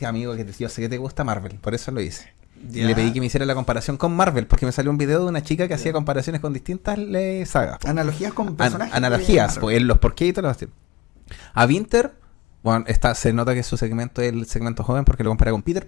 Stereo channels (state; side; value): quieter; right; 18.9 dB